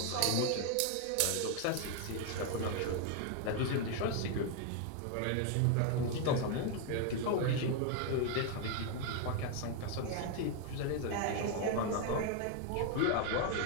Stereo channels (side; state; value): both; different; correlation 0.01